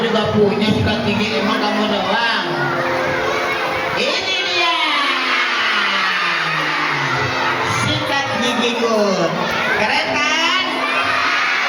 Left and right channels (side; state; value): both; identical; correlation 1.00